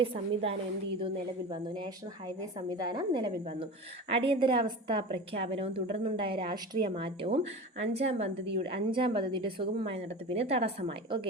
സംവിധാനം എന്ത് ചെയ്തു? നിലവിൽ വന്നു. നാഷണൽ ഹൈവേ സംവിധാനം നിലവിൽ വന്നു. അടിയന്തരാവസ്ഥ പ്രഖ്യാപനവും തുടർന്നുണ്ടായ രാഷ്ട്രീയ മാറ്റവും 5ാം പദ്ധതിയുടെ സുഗമമായ നടത്തിപ്പിന് തടസ്സമായി.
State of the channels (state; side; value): normal; both; correlation 0.31